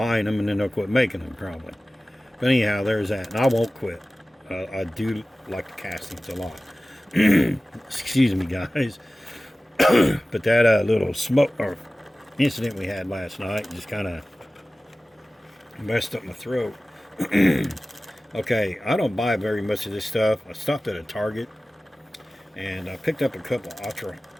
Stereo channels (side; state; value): both; normal; correlation 0.96